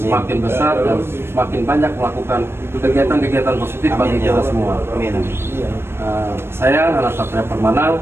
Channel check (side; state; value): left; late; 0.12 ms